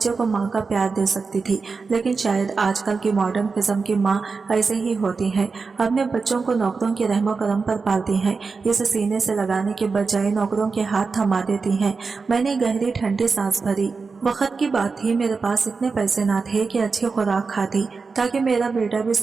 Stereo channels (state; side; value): quieter; left; 4.6 dB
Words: को माँ का प्यार दे सकती थी। लेकिन शायद आजकल की मॉडर्न किस्म की माँ ऐसे ही होती है, अपने बच्चों को नौकरों के रहमो करम पर पालती हैं, इसे सीने से लगाने के बजाय नौकरों के हाथ थमा देती हैं। मैंने गहरी ठंडी सांस भरी। वक्त की बात थी, मेरे पास इतने पैसे ना थे कि अच्छी खुराक खाती ताकि मेरा बेटा भी